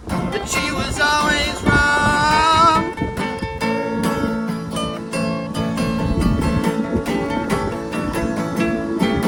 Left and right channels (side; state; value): both; identical; correlation 1.00